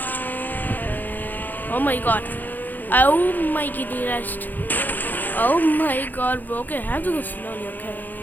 Oh my god. Oh my kitty rest. Oh my god, bro. Okay, I have to go slowly, okay?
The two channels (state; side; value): late; right; 0.086 ms